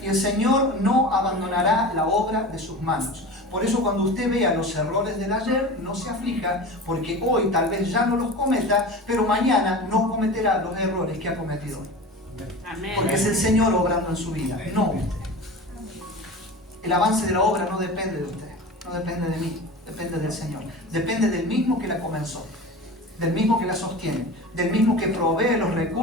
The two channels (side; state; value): both; normal; correlation 0.32